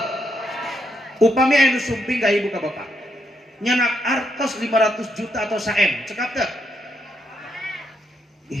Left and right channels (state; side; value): normal; both; correlation 0.79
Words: upami aya nu sumping ka ibu ka bapak nyanak artos 500 juta atau saem cekap teu